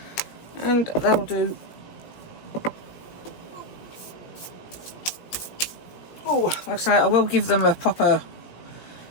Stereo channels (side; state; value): right; late; 17 ms